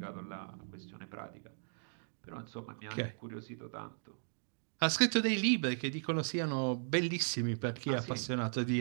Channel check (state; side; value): silent; left; digital silence